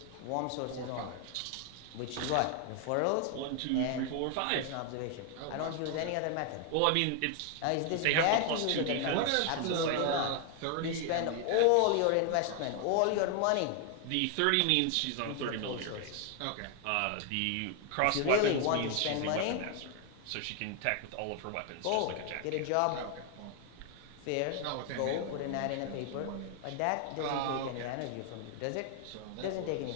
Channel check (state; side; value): different; both; correlation 0.00